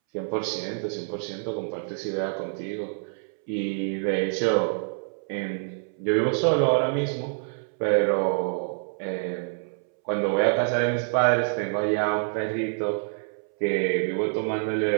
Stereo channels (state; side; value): silent; left; 60 dB below the other